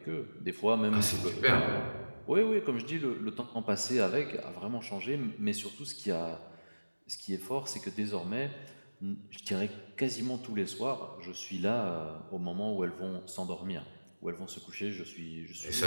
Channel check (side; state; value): both; inverted; correlation -1.00